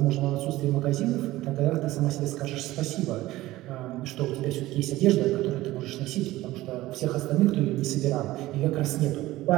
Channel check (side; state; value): left; quieter; 17.0 dB